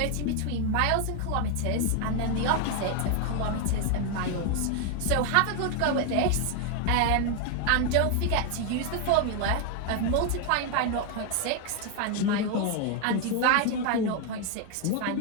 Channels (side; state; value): both; different; correlation 0.01